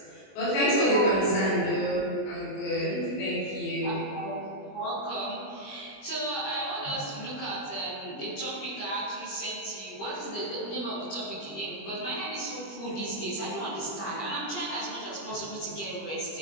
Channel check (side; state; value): right; late; 20 ms